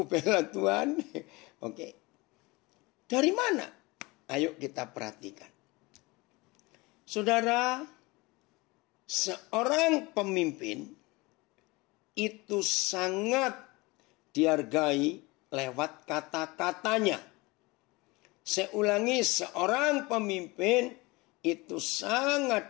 bela Tuhan. Oke. Dari mana? Ayo kita perhatikan. Saudara, seorang pemimpin itu sangat dihargai lewat kata-katanya. Saya ulangi, seorang pemimpin itu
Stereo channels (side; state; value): right; quieter; 23.7 dB